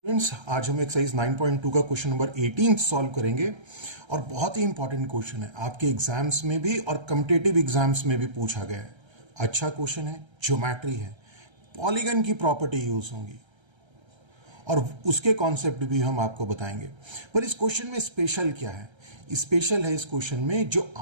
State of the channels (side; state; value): left; late; 1.3 ms